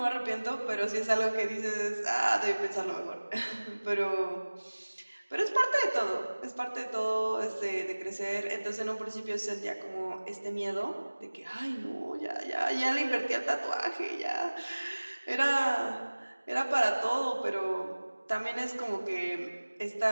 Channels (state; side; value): inverted; both; correlation -1.00